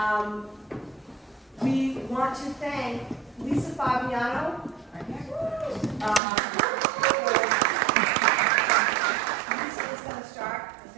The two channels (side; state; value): left; drops out; at 6.2 s